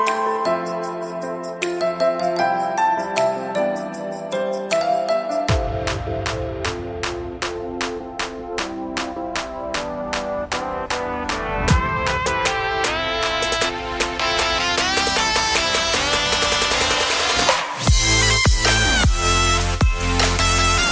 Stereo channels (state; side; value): identical; both; correlation 1.00